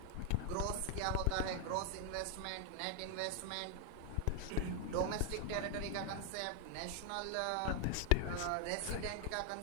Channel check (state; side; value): different; both; correlation 0.00